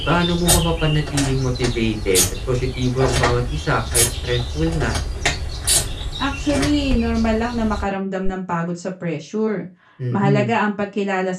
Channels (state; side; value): identical; both; correlation 1.00